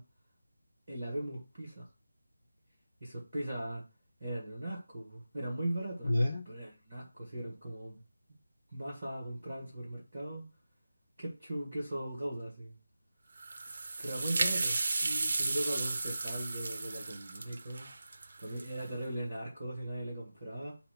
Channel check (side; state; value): both; inverted; correlation -0.94